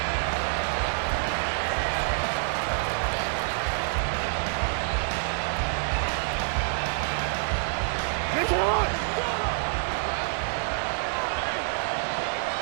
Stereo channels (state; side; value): silent; left; 60 dB below the other